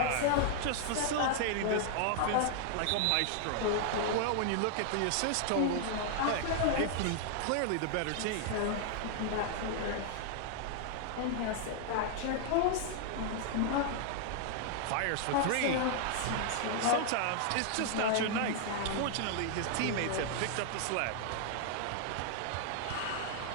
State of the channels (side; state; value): both; different; correlation 0.00